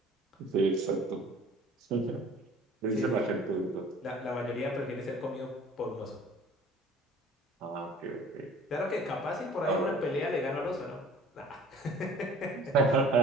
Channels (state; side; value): normal; both; correlation 0.49